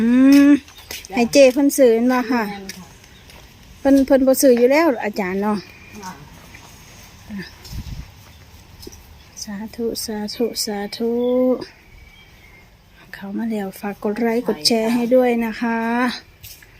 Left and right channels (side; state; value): both; identical; correlation 1.00